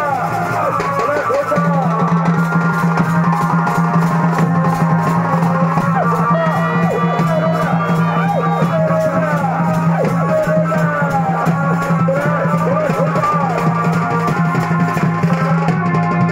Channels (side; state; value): both; identical; correlation 1.00